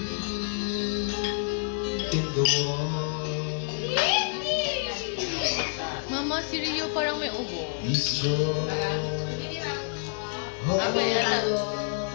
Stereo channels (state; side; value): silent; right; 59 dB below the other